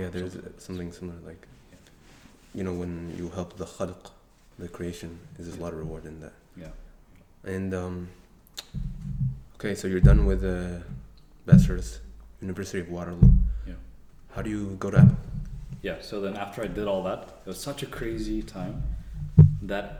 there's something similar. Like, when you help the khalq, the creation, there's a lot of reward in that. Yeah. And okay, so you're done with bachelor's, University of Waterloo. Yeah. How do you go to Apple? Yeah. So then after I did all that, it was such a crazy time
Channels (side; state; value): both; identical; correlation 1.00